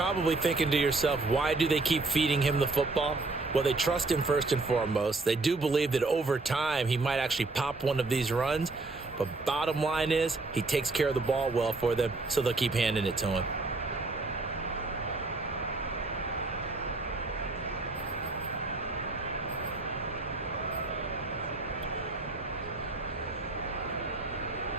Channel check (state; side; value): quieter; left; 3.4 dB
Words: thinking to yourself, why do they keep feeding him the football? Well, they trust him first and foremost. They do believe that over time he might actually pop one of these runs. But bottom line is he takes care of the ball well for them, so they'll keep handing it to him.